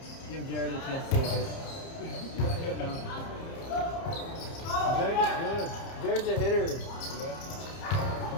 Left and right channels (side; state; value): right; late; 30 ms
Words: Jared a chance to hit. Jared is good. Jared's a hitter.